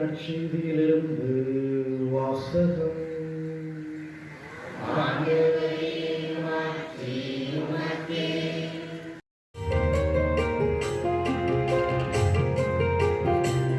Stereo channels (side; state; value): both; identical; correlation 1.00